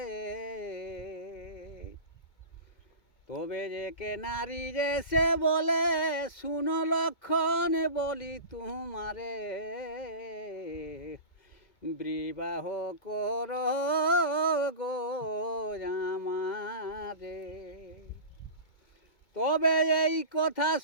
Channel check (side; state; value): right; late; 2.1 ms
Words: তবে যে কে নারী রে সে বলে শুনো লক্ষণ বলি তোমারে বিবাহ কর গো আমারে। তবে এই কথা